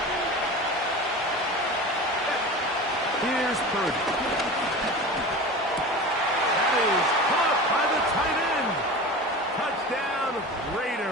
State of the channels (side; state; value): both; normal; correlation 0.32